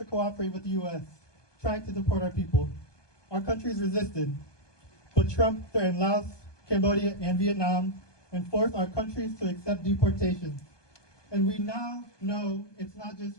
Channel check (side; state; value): right; late; 1.2 ms